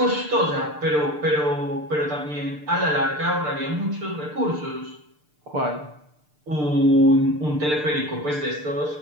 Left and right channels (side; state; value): left; late; 6.7 ms